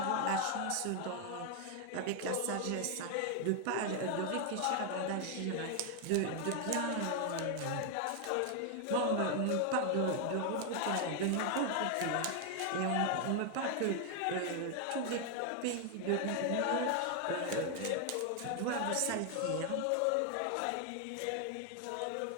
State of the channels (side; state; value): both; different; correlation 0.00